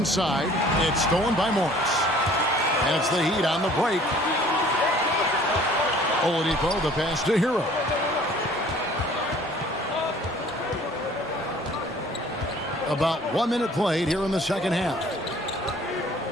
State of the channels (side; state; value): both; normal; correlation 0.52